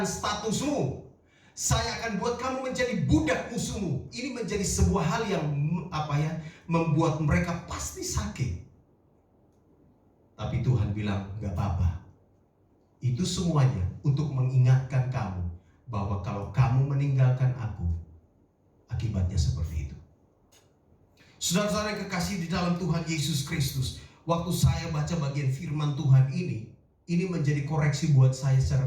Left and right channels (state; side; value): identical; both; correlation 1.00